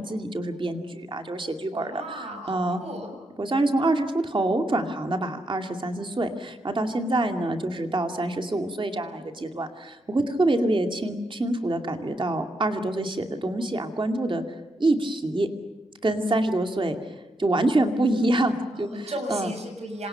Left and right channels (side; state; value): both; normal; correlation 0.81